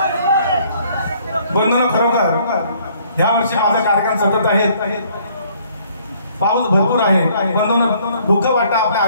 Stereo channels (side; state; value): both; inverted; correlation -0.62